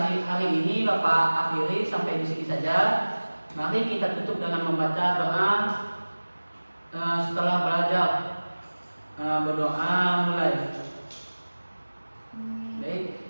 hari ini Bapak akhiri sampai di sini saja. Mari kita tutup dengan membaca doa setelah belajar. berdoa mulai. Baik.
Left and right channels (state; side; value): inverted; both; correlation -1.00